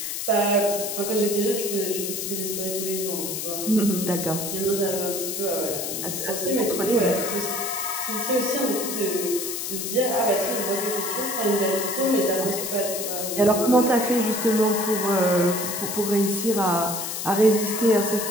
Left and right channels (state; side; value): noise; left; hiss, 4 dB below the sound